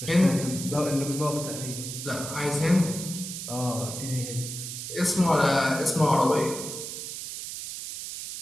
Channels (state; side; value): noise; right; hiss, 7 dB below the sound